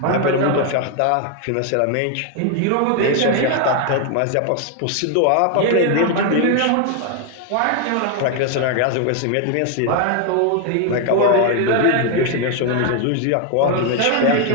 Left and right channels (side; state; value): both; different; correlation 0.01